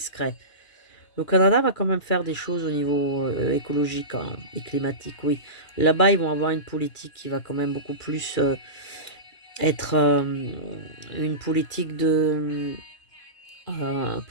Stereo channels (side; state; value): right; late; 2.3 ms